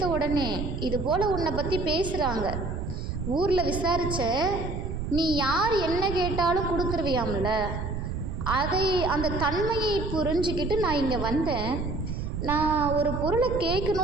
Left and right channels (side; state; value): right; noise; rumble, 4 dB below the sound